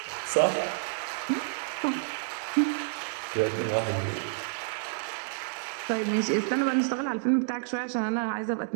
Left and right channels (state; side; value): silent; left; digital silence